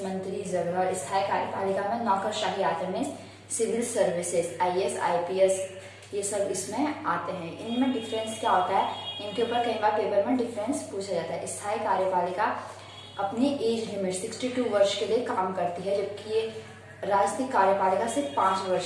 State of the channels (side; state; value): both; identical; correlation 1.00